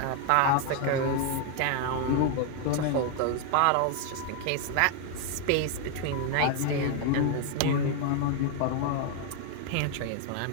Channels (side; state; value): both; different; correlation 0.01